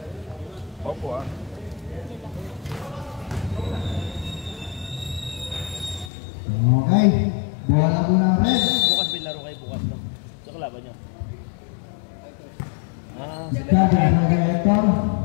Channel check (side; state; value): right; drops out; at 6.1 s